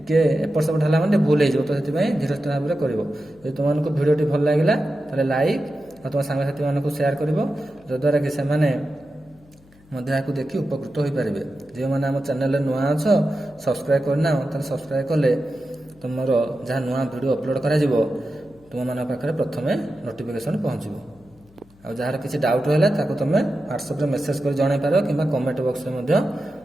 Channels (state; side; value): noise; left; hum, 28 dB below the sound